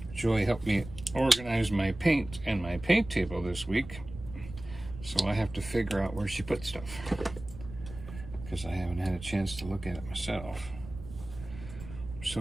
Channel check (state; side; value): noise; right; rumble, 13 dB below the sound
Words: Joy helped me organize my paint and my paint table this week, so I have to figure out where she put stuff because I haven't had a chance to look at it myself.